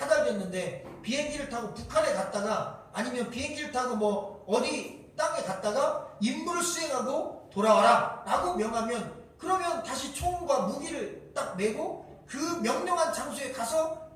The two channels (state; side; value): identical; both; correlation 1.00